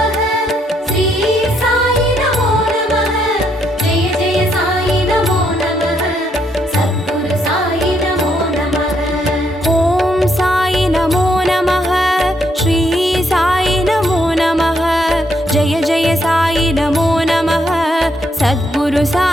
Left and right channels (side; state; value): both; normal; correlation 0.74